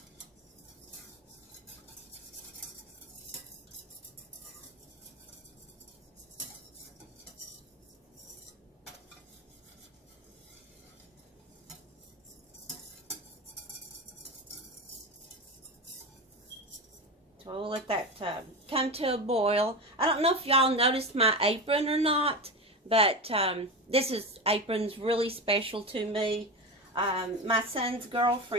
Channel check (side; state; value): both; normal; correlation 0.22